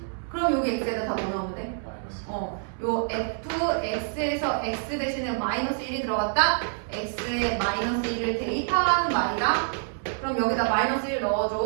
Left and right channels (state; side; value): silent; left; 60 dB below the other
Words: 그럼 여기 x에다 다 뭐 넣으면 돼? 요 fx에서 x 대신에 마이너스 1이 들어갔다? x에 마이너스 1을 대입하라는 말이다. 그럼 여기다 마이너스 1